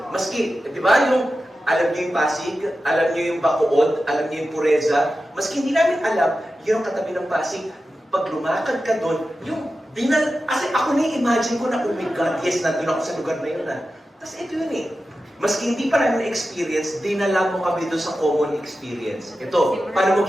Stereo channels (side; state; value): both; normal; correlation 0.92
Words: maski, di ba yung alam niyo yung Pasig, alam niyo yung Bacood, alam niyo yung Pureza, maski hindi namin alam, yun ang katabi ng Pasig, pag lumakad ka doon, yung kasi ako na-imagine ko na, oh my God, yes, nandun ako sa lugar na yun ah. Tapos ito yun eh. Maski hindi pa namin experience, dinala mo kami doon sa common experience. Ito, paano